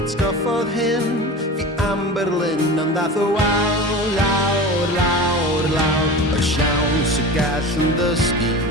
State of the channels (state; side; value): normal; both; correlation 0.32